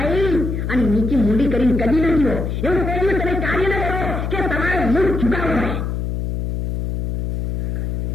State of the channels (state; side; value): noise; left; hum, 2 dB below the sound